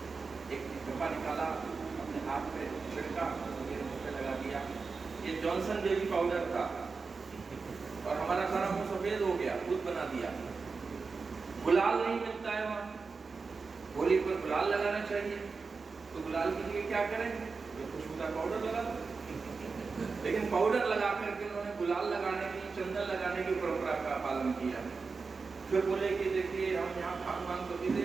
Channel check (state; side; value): quieter; left; 4.6 dB